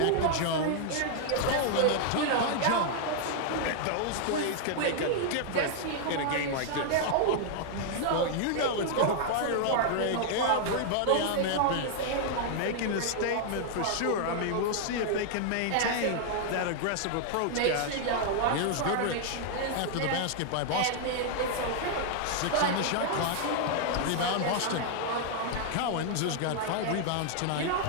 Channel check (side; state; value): both; different; correlation 0.00